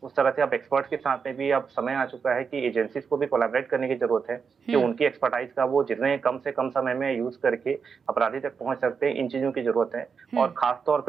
उस तरह से अब एक्सपर्ट्स के साथ में भी अब समय आ चुका है कि एजेंसीज को भी कोलैबोरेट करने की जरूरत है कि उनकी एक्सपर्टाइज का वो जितने कम से कम समय में यूज करके अपराधी तक पहुंच सकते हैं, इन चीजों की जरूरत है। और खासतौर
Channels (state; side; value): quieter; left; 5.8 dB